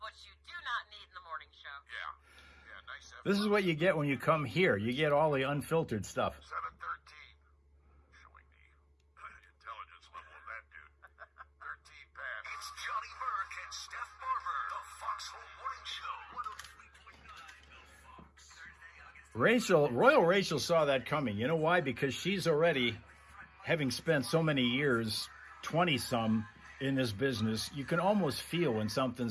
you do not need in the morning show. Yeah, nice. This is what you get when you come here. You get all the unfiltered stuff. 713. Showing the intelligence level of that dude. 13 pass. It's Johnny Burke and Steph Barber, the Foxhole Morning Show. 103.9 The Fox. Royal Rachel saw that coming. You know why? Because she's already, having spent so many years, 20-some, in this business, you can almost feel when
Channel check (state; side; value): identical; both; correlation 1.00